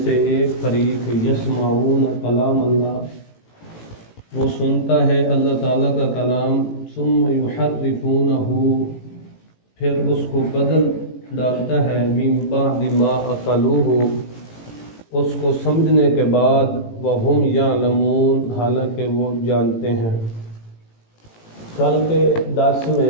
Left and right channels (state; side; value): late; right; 18 ms